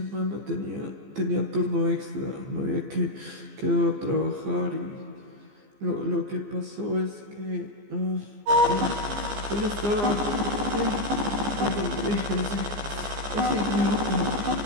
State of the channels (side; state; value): left; late; 15 ms